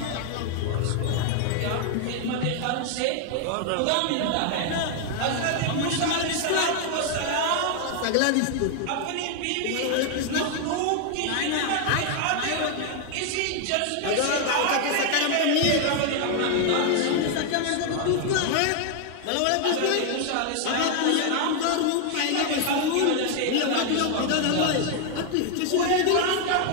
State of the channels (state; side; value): different; both; correlation 0.00